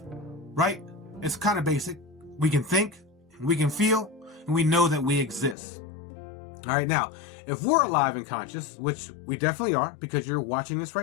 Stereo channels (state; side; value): drops out; right; at 5.6 s